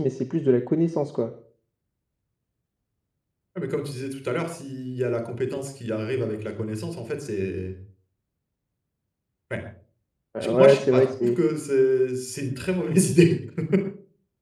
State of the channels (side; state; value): both; identical; correlation 1.00